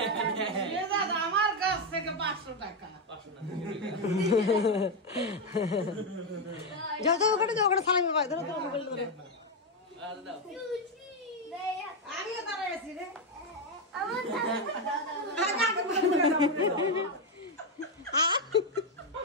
আমার কাছ থেকে 500 টাকা যত ওখানে সালামি পাই ধরো মোবাইল ধরে আমিও দাঁড়ায় আছি রে আমার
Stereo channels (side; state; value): both; normal; correlation 0.05